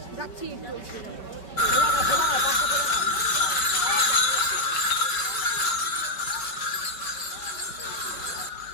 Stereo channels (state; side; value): late; right; 5.2 ms